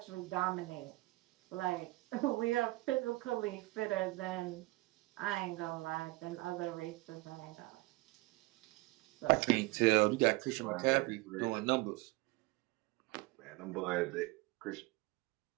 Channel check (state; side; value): quieter; left; 21.7 dB